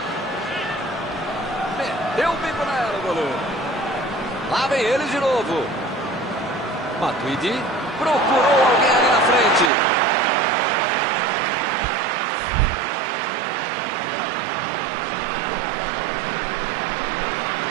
Meteu o bico nela, o goleiro. Lá vem eles de novo. Matuidi procurou alguém ali na frente.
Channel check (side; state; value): left; drops out; at 9.7 s